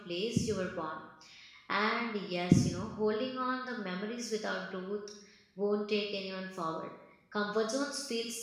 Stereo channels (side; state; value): both; identical; correlation 1.00